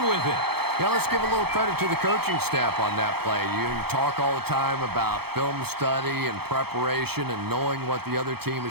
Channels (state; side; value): late; left; 0.96 ms